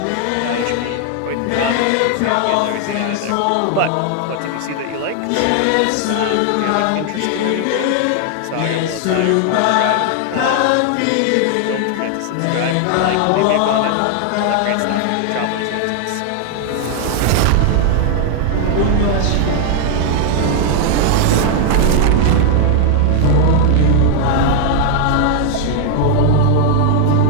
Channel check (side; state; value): both; different; correlation 0.00